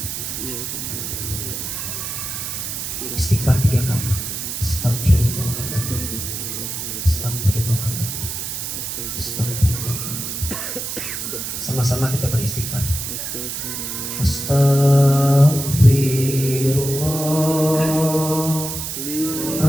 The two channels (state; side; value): noise; right; hiss, 5 dB below the sound